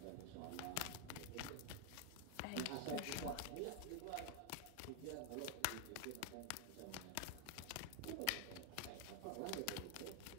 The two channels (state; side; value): different; both; correlation 0.00